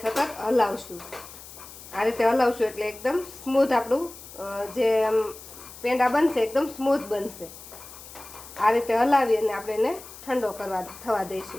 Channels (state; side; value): noise; left; hiss, 16 dB below the sound